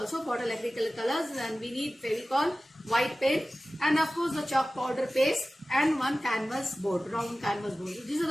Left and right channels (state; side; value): normal; both; correlation 0.96